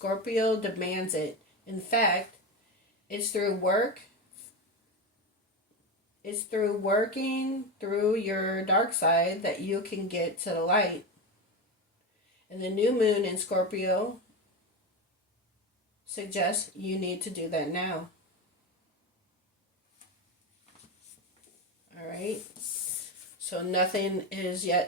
demands it. In fact, it's through working through your dark side that you can get to the light. And the new moon in Scorpio suggests you need to do that now. All right. So nothing is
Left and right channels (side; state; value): both; normal; correlation 0.18